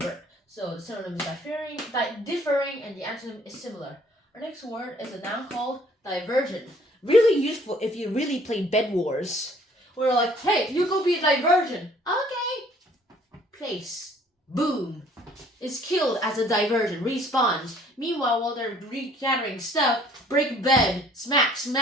So the synonym is differing, and the antonym is similar. Our next word is a noun called divergent. Really useful if you really play Bed Wars. We're like, hey, you go be a divergent. Okay. Place. Boom. Is killed as a divergent. Respawns. Meanwhile, while they're regathering stuff, break bed. Smack,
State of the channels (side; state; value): both; normal; correlation 0.58